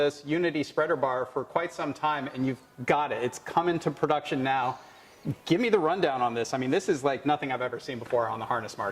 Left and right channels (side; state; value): both; identical; correlation 1.00